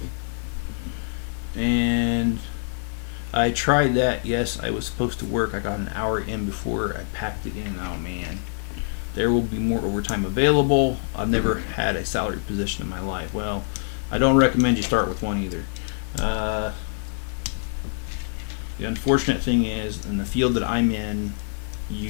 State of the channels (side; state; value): right; silent; digital silence